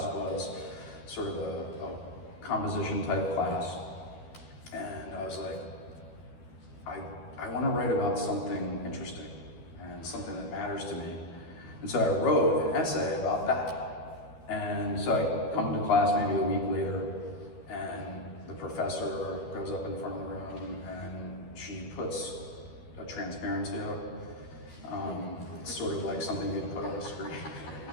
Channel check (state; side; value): late; right; 12 ms